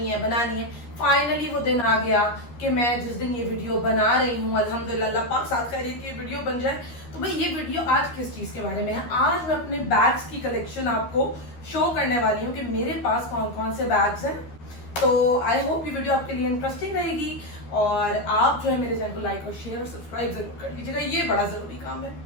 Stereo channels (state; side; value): late; right; 13 ms